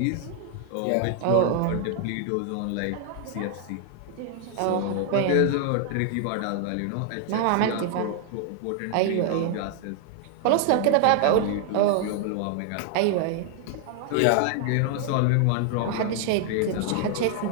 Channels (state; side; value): different; both; correlation 0.00